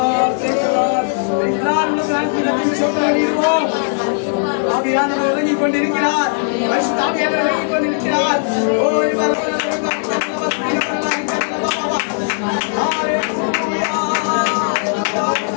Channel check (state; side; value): silent; right; digital silence